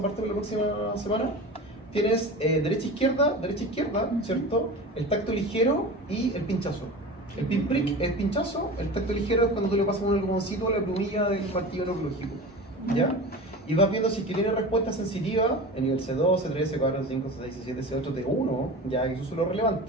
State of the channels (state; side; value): normal; both; correlation 0.32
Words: para la próxima semana. Tienes derecha, izquierda, ¿cierto? El tacto ligero y el pinchazo. El pinprick es pinchazo, el tacto ligero es cuando tú le pasas un algodoncito a la plumilla del martillo neurológico. ¿Ya? Y vas viendo si es que tiene respuesta sensitiva en nivel C2, C3, C4, C5, C6, C7, C8, T1, ya que esos son los